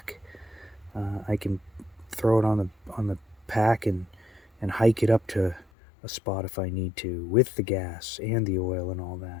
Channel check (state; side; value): drops out; right; at 5.7 s